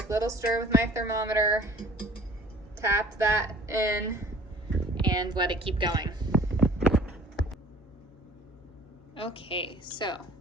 little stir with my thermometer, tap that in, and let it keep going. Okay, so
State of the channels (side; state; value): both; normal; correlation 0.49